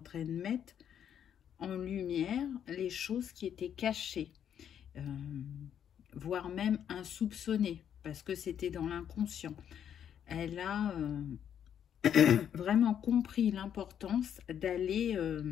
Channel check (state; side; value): quieter; right; 9.1 dB